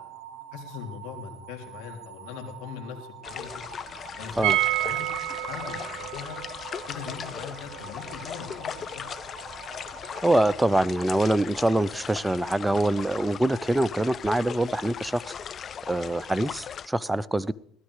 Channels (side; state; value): both; normal; correlation 0.84